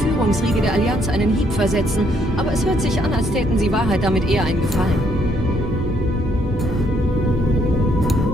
der Allianz einen Hieb versetzen, aber es hört sich an, als täten sie Wahrheit damit eher einen Gefallen.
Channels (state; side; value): normal; both; correlation 0.70